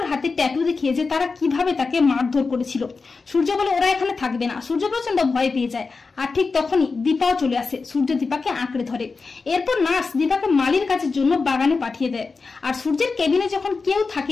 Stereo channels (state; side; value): quieter; right; 4.4 dB